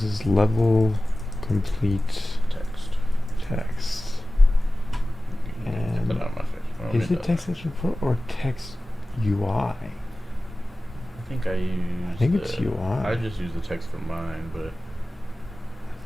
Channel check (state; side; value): normal; both; correlation 0.96